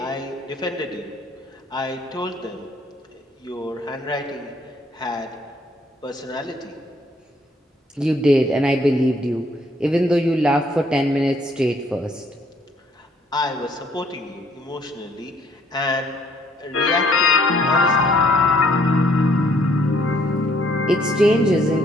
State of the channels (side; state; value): both; normal; correlation 0.64